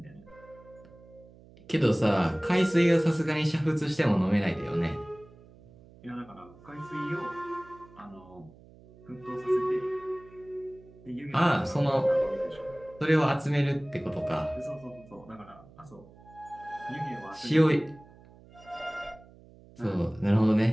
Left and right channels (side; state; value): right; noise; hum, 23 dB below the sound